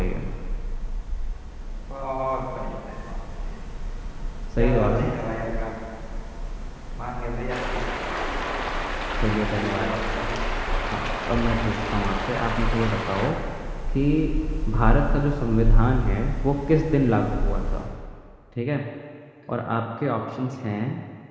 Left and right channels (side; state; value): both; identical; correlation 1.00